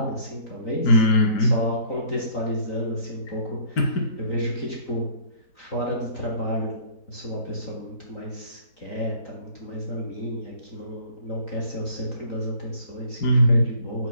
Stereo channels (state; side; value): late; right; 3.9 ms